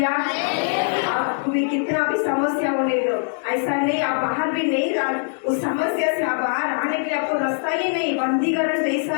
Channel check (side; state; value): right; silent; digital silence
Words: आपको भी कितना भी समस्या होने दो, ऐसा नहीं आप बाहर भी नहीं उस समस्या से आप बाहर आने के लिए आपको रास्ता ही नहीं। बंदीकरण जैसा